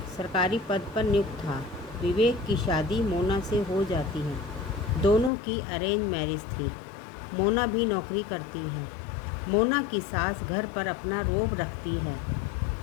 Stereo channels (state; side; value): drops out; right; at 5.3 s